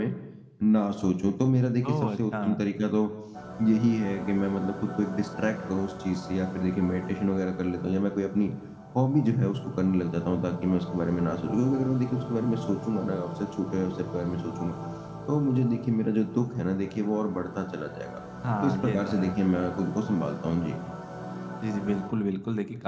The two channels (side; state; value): both; identical; correlation 1.00